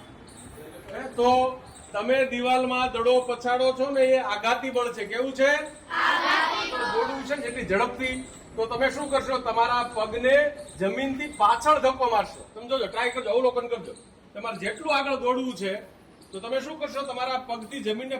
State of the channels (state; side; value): identical; both; correlation 1.00